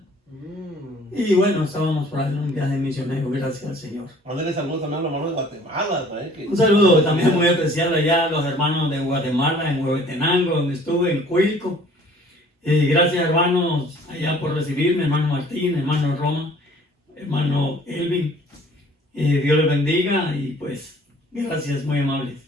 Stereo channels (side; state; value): both; normal; correlation 0.53